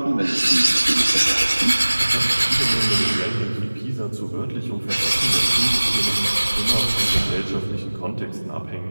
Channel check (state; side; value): inverted; both; correlation -1.00